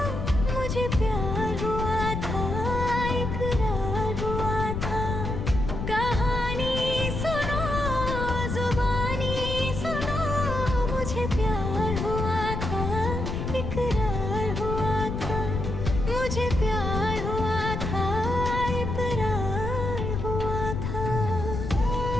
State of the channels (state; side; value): noise; left; rumble, 3 dB below the sound